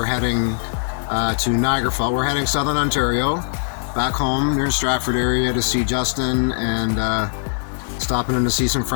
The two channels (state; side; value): silent; right; digital silence